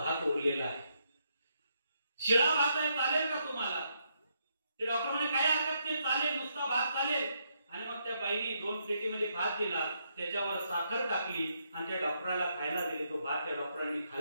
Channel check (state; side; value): inverted; both; correlation -0.77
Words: उरलेला आहे, शिळा भात आहे, चालेल का तुम्हाला? ते डॉक्टर म्हणे काय हरकत नाही, चालेल, नुसता भात चालेल. आणि मग त्या बाईने 2 प्लेटीमध्ये भात दिला, त्याच्यावर साखर टाकली आणि त्या डॉक्टराला खायला दिले. तो भात त्या डॉक्टरांनी